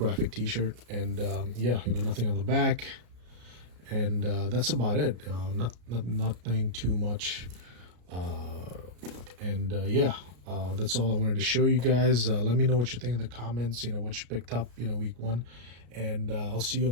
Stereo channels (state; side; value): late; left; 33 ms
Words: t-shirt. And yeah, nothing on the back, and that's about it. Nothing too much. And yeah, that's all I wanted to show you guys. Let me know what you think in the comments, what you picked up week 1, and I'll see you